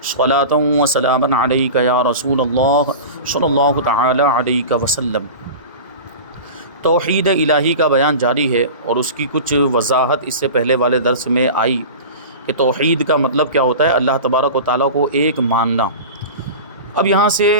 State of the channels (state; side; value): inverted; both; correlation -0.32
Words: صلاۃ وسلاما علیک یا رسول اللہ صلی اللہ تعالی علیہ وسلم۔ توحید الہی کا بیان جاری ہے اور اس کی کچھ وضاحت اس سے پہلے والے درس میں آئی کہ توحید کا مطلب کیا ہوتا ہے، اللہ تبارک و تعالیٰ کو ایک ماننا۔ اب یہاں سے